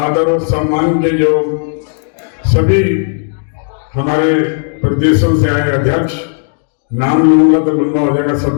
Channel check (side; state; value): right; silent; 58 dB below the other